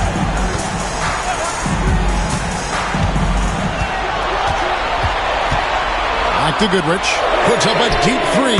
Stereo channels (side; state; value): both; identical; correlation 1.00